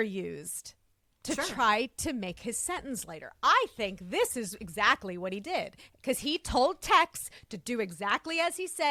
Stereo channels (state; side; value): identical; both; correlation 1.00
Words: used to try to make his sentence lighter. I think this is exactly what he did, because he told Tex to do exactly as he